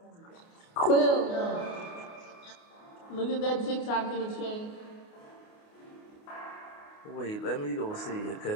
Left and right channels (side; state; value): right; late; 28 ms